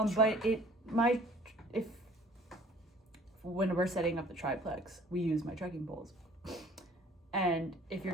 when we're setting up the triplex, we use my trekking poles. And if you're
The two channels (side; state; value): both; normal; correlation 0.53